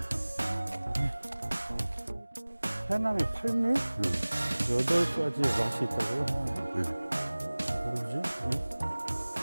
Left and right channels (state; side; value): inverted; both; correlation -1.00